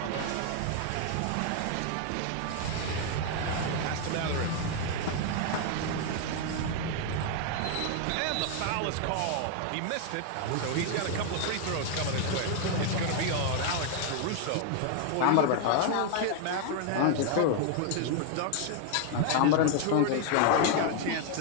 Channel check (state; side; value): different; both; correlation 0.00